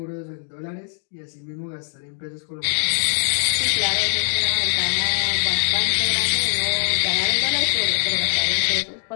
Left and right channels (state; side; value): silent; right; 58 dB below the other